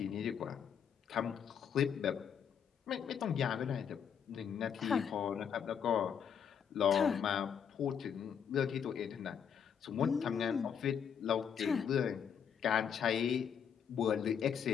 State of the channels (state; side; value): quieter; right; 7.8 dB